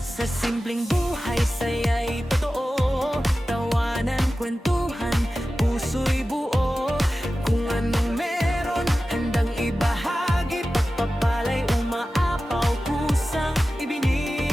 Sa simpleng buhay, saya'y totoo, tawanan, kwentuhan, puso'y buo. Kung anong meron, handang ibahagi, pagpapalay, umaapaw, kusang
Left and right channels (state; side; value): normal; both; correlation 0.95